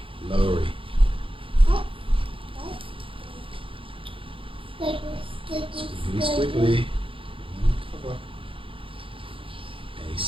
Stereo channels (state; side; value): late; left; 0.25 ms